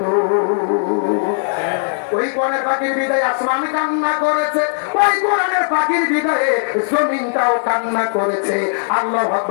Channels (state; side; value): silent; right; digital silence